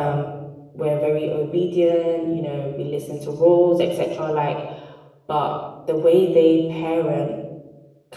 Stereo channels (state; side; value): identical; both; correlation 1.00